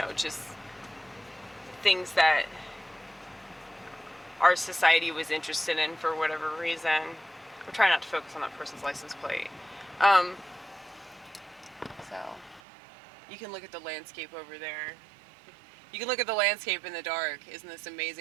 just things that our society was interested in for whatever reason. I'm trying not to focus on that person's license plate. So you can look at the landscape over there. You can look at the landscape in the dark. Isn't this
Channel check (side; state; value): left; drops out; at 12.6 s